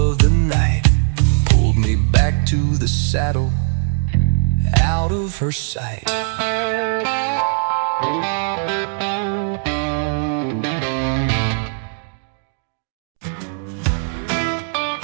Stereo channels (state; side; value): silent; left; 66 dB below the other